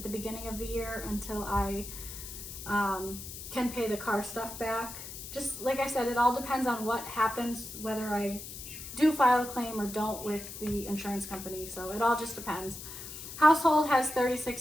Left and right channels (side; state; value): left; noise; hiss, 11 dB below the sound